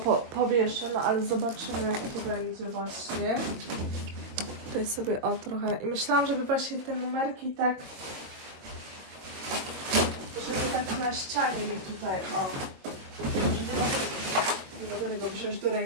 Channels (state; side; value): late; left; 22 ms